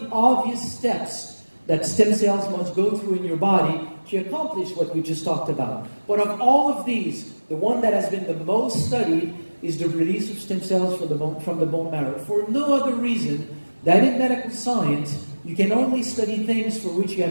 obvious steps that stem cells must go through in your body to accomplish what we just talked about. But of all of these, the one that has been the most studied is the release of stem cells from the bone marrow. For no other reason that in medical science, you can only study things for which you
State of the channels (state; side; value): inverted; both; correlation -1.00